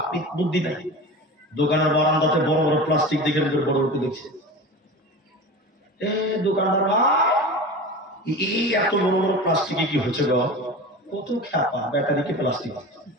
বুদ্ধি নাই। দোকানের বারান্দাতে বড় বড় প্লাস্টিক দেখে বড় বড় দেখছে, দোকানদার এই এত বড় বড় প্লাস্টিকে কি হচ্ছে গো? কত খেপা, ব্যাটারিকে প্লাস্টিক,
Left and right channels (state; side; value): normal; both; correlation 0.32